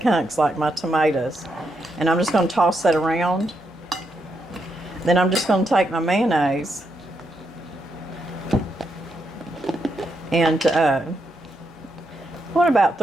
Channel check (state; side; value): normal; both; correlation 0.81